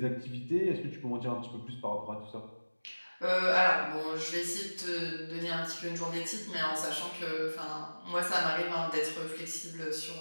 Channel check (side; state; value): both; inverted; correlation -1.00